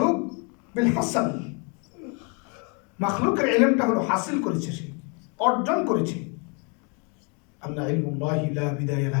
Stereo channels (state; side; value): quieter; right; 34.7 dB